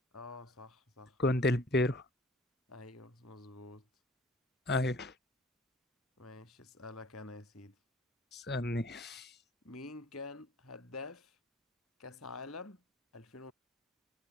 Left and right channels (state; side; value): normal; both; correlation 0.51